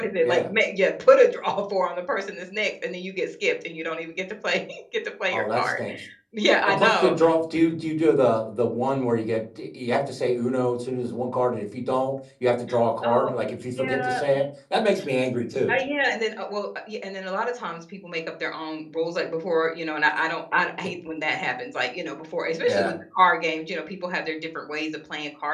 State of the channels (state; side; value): identical; both; correlation 1.00